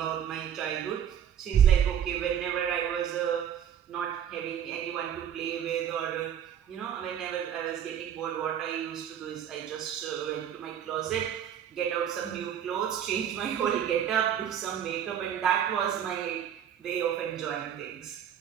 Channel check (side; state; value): left; quieter; 9.3 dB